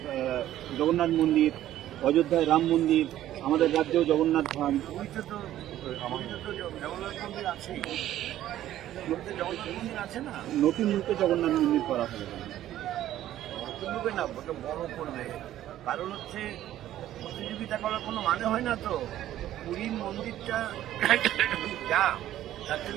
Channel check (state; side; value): quieter; left; 12.9 dB